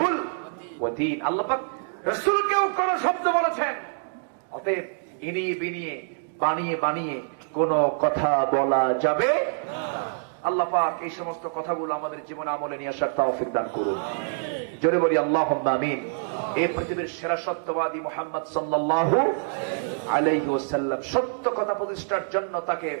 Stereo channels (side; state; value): left; silent; digital silence